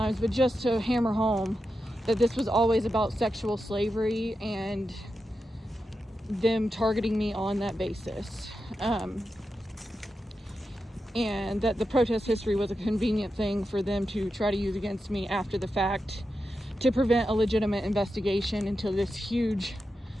but just to hammer home that this was always about sexual slavery and them targeting me on that basis. And that the protest history was a convenient thing for them to try to use against me after the fact to prevent a legitimate investigation into this huge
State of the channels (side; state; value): both; normal; correlation 0.89